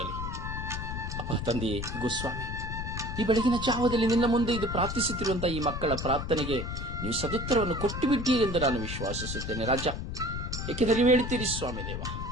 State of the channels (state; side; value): noise; left; rumble, 5 dB below the sound